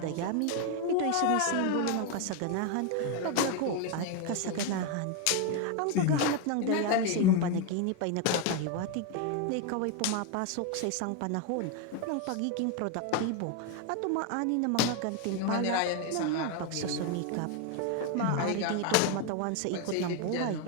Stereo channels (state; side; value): different; both; correlation 0.01